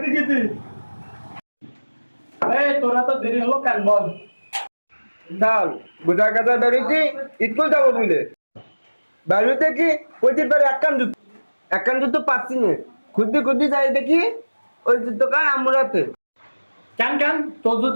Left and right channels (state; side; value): inverted; both; correlation -1.00